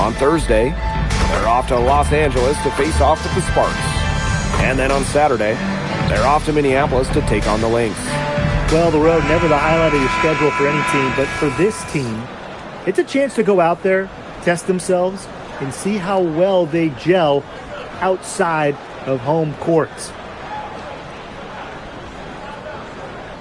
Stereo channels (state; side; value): identical; both; correlation 1.00